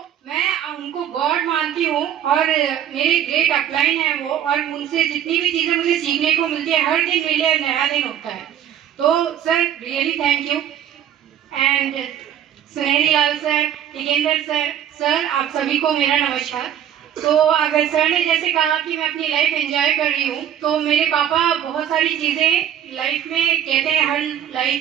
मैं उनको गॉड मानती हूँ और मेरे ग्रेट अपलाइन है वो, और उनसे जितनी भी चीज़ें मुझे सीखने को मिलती है, हर दिन मेरे लिए नया दिन होता है। तो sir really thank you. And सुनहरी लाल सर, टिकेंद्र सर, सर आप सभी को मेरा नमस्कार। तो अगर सर ने जैसे कहा कि मैं अपनी लाइफ एंजॉय कर रही हूँ, तो मेरे पापा बहुत सारी चीज़ें लाइफ में कहते हैं, हर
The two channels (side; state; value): left; quieter; 10.1 dB